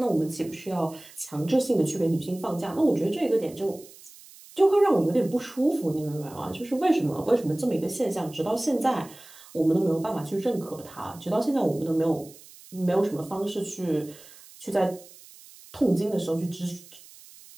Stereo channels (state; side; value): noise; right; hiss, 21 dB below the sound